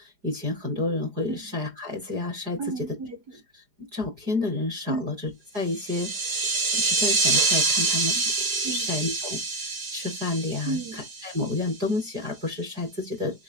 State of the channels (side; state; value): left; late; 4.9 ms